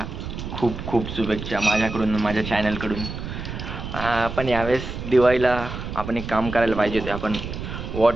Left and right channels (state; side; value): noise; right; rumble, 7 dB below the sound